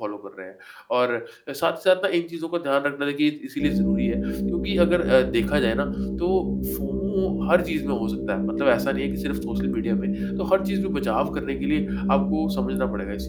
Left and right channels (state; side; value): identical; both; correlation 1.00